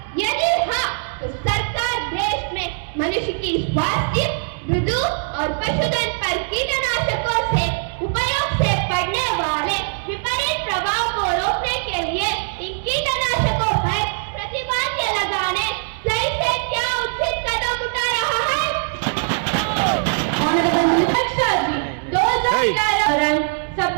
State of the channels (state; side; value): silent; left; 63 dB below the other